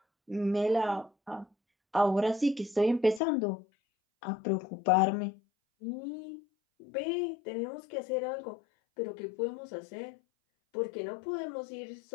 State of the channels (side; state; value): right; drops out; at 3.2 s